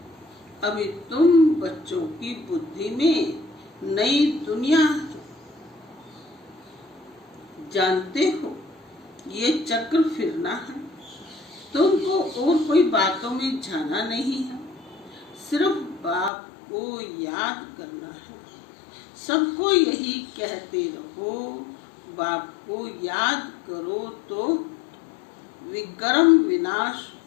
अभी तुम बच्चों की बुद्धि में नई दुनिया जानते हो, ये चक्र फिरना है। तुमको और कोई बातों में जाना नहीं है, सिर्फ बाप को याद करना है। सबको यही कहते रहो, बाप को याद करो तो विक्रम विनाश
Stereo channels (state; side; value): drops out; right; at 16.3 s